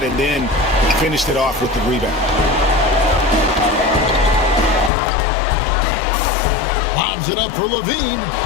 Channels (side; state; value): right; drops out; at 4.9 s